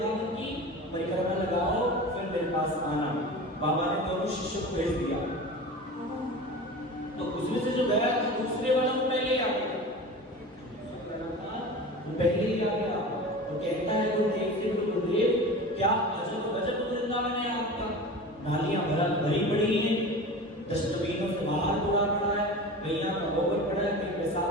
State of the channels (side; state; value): both; normal; correlation 0.33